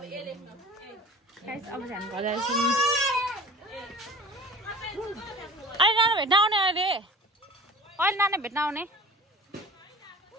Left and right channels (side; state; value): both; normal; correlation 0.43